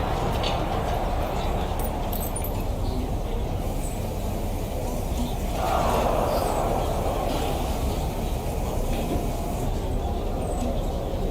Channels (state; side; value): identical; both; correlation 1.00